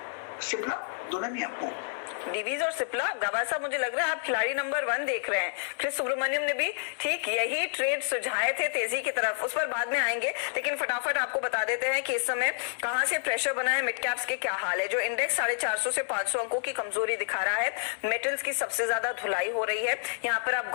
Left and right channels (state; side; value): silent; right; 59 dB below the other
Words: सिप्ला दोनों में आपको डिवीज और सिप्ला। गवा साहब, मुझे लग रहा है आप खिलाड़ी नंबर 1 देख रहे हैं। क्रिस सुब्रमण्यम ने भी ठीक यही ट्रेड सुझाए थे तेजी की तरफ, उस पर बाद में आएंगे। लेकिन फटाफट आपको बता देते हैं कि इस समय कहां से प्रेशर बना है, मिड कैप्स के क्या हाल है। जो इंडेक्स 450 से 500 अंकों की कमजोरी दिखा रहा है, मेटल्स की सबसे ज्यादा धुलाई हो रही है। यहाँ पर आप